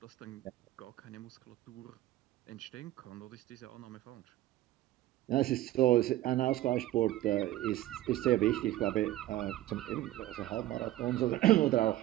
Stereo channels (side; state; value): left; quieter; 15.3 dB